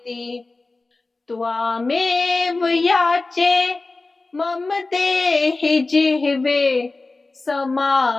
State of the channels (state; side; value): quieter; right; 3.4 dB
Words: त्वामेव याचे मम देहि जिह्वे